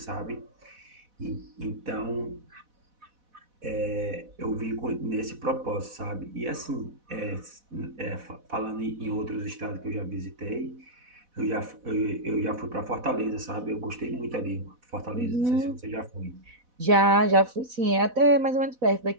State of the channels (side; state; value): left; late; 4.1 ms